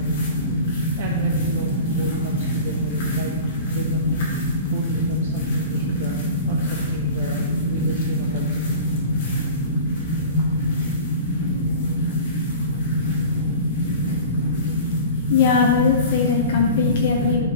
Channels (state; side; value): inverted; both; correlation -0.37